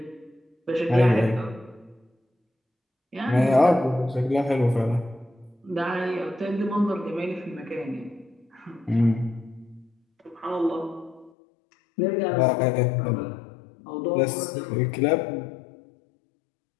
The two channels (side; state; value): right; drops out; at 11.3 s